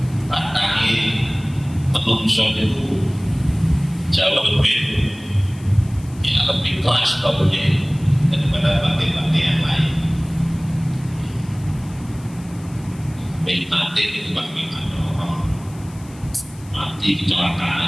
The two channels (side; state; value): left; noise; hiss, 24 dB below the sound